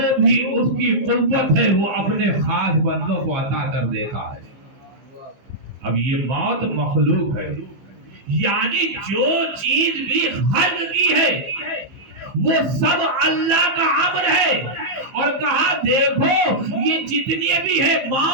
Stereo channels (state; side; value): late; left; 15 ms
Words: بھی اس کی قوت ہے وہ اپنے خاص بندوں کو عطا کر دیتا ہے۔ اب یہ موت مخلوق ہے، یعنی جو چیز بھی خلق کی ہے وہ سب اللہ کا امر ہے، اور کہا دیکھو یہ جتنی بھی ہے،